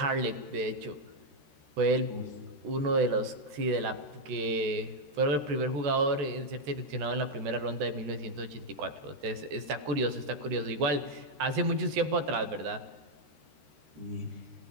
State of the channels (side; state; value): left; late; 13 ms